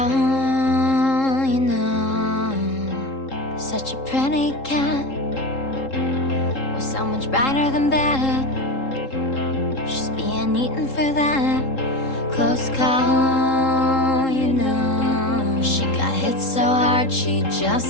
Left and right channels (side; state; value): right; late; 3.7 ms